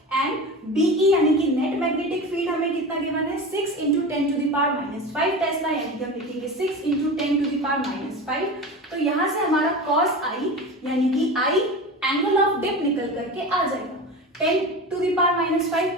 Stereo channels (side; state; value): both; normal; correlation 0.29